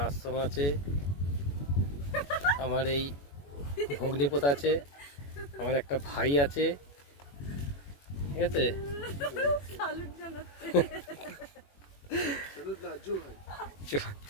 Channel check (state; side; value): late; right; 21 ms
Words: আশ্রম আছে, আমার এই ভগ্নিপথ আছে, আমার একটা ভাই আছে, ঠিক আছে।